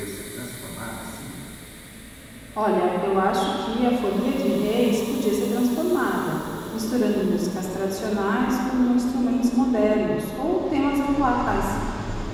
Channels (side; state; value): both; identical; correlation 1.00